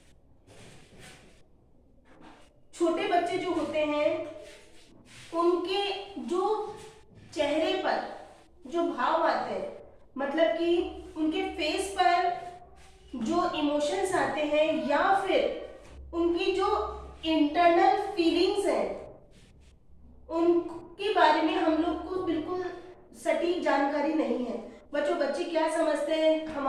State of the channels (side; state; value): both; identical; correlation 1.00